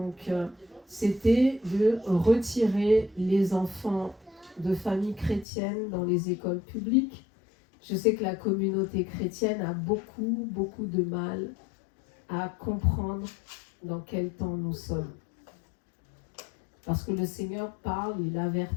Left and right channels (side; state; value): right; drops out; at 5.5 s